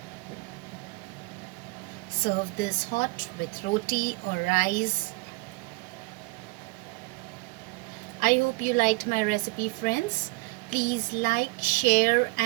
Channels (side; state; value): left; quieter; 25.9 dB